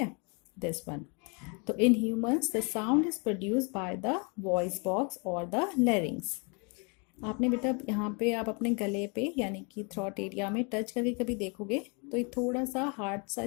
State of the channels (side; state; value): right; quieter; 34.0 dB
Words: दिस वन। तो in humans the sound is produce by the voice box और द लैरिंग्स। आपने बेटा यहाँ पे आप अपने गले पे यानी कि थ्रॉट एरिया में टच करके कभी देखोगे तो ये थोड़ा सा हार्ड सा